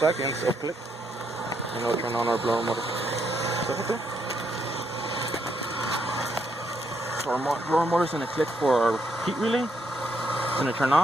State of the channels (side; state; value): both; normal; correlation 0.76